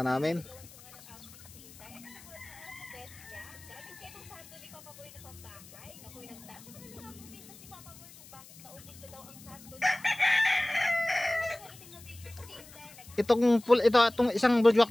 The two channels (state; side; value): noise; left; hiss, 20 dB below the sound